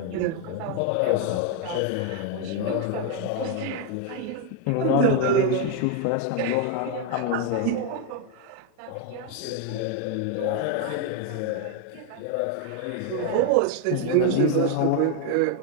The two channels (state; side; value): different; both; correlation 0.01